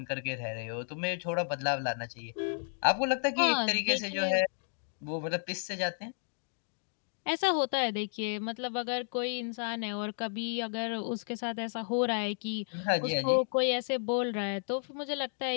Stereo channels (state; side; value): silent; right; digital silence